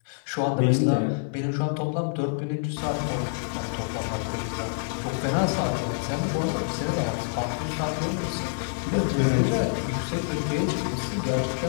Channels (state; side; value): silent; right; 60 dB below the other